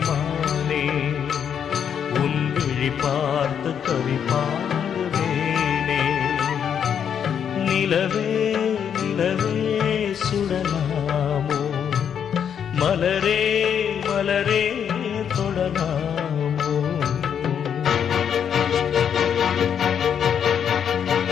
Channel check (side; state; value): right; quieter; 8.2 dB